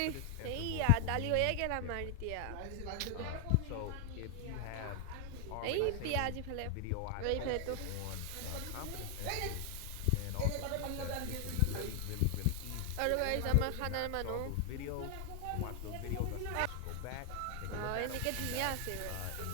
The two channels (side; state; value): both; different; correlation 0.00